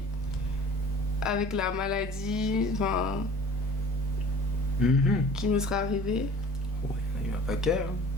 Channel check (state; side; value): normal; both; correlation 0.47